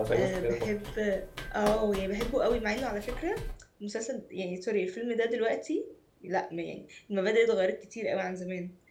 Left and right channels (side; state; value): both; identical; correlation 1.00